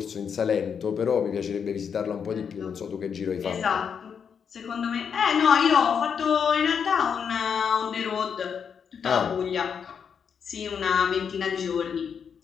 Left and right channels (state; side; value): quieter; right; 7.0 dB